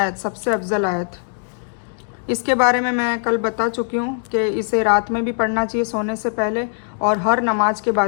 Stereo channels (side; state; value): right; silent; digital silence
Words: सबसे अफजल आयत। इसके बारे में मैं कल बता चुकी हूँ कि इसे रात में भी पढ़ना चाहिए सोने से पहले, और हर नमाज के